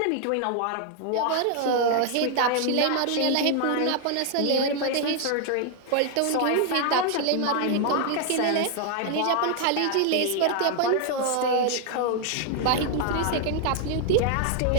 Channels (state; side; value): different; both; correlation 0.00